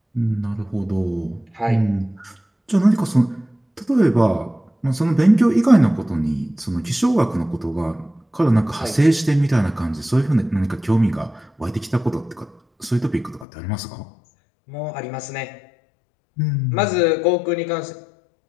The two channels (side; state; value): right; drops out; at 13.5 s